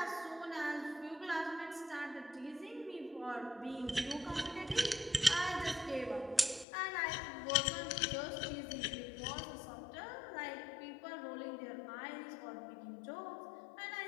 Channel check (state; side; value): drops out; right; at 6.7 s